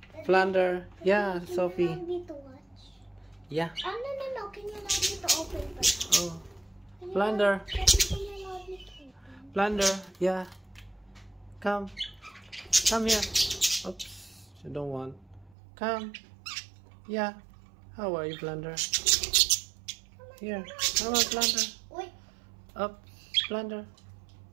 Plunder? Yeah, Sophie. Yeah. Oh, no. Can you allow me to open first? Oh. Plunder. Plunder. Yeah. Come here. Oops. You don't want. Come. Yeah. How are you, Plunder? Here. Come on, Plunder. Up. Plunder.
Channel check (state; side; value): drops out; left; at 15.6 s